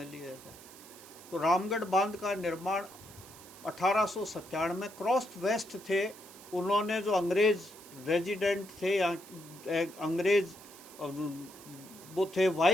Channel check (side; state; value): right; noise; hiss, 19 dB below the sound